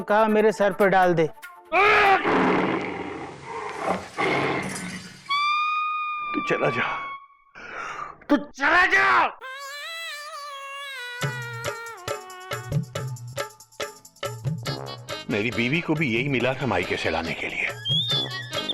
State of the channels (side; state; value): both; identical; correlation 1.00